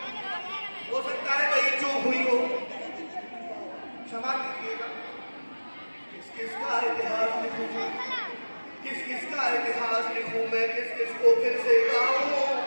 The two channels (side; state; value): both; inverted; correlation -1.00